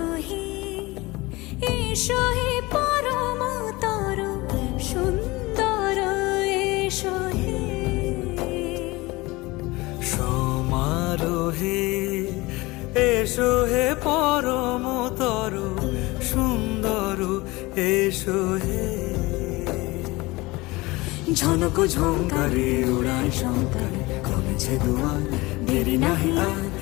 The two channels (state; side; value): quieter; right; 21.9 dB